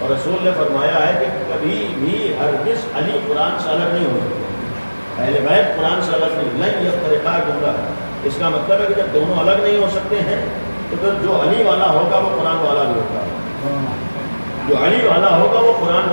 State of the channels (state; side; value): inverted; both; correlation -1.00